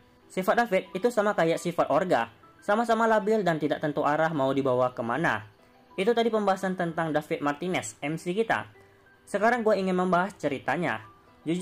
sifat David itu sama kayak sifat Orga, sama-sama labil dan tidak tentu arah mau dibawa kemana. Itu tadi pembahasan tentang David Martinez, MC kita. Sekarang gua ingin membahas ceritanya.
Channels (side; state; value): both; identical; correlation 1.00